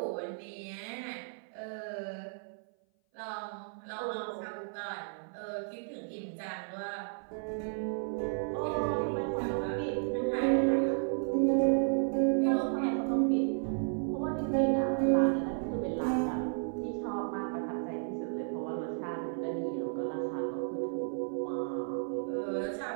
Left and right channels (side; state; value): left; silent; 56 dB below the other